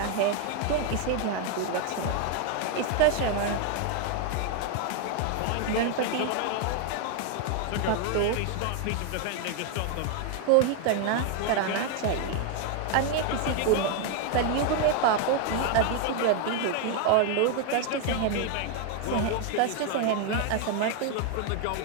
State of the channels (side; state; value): both; different; correlation 0.01